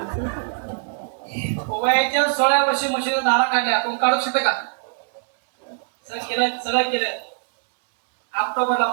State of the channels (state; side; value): silent; left; digital silence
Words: वयाच्या 16 वर्षी म्हशीनं दारा काढल्या. कोण काढू शकते का? सगळं केलं. ऑक्टोबरला